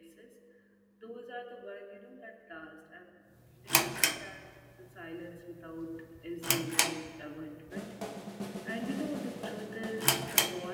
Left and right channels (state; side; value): identical; both; correlation 1.00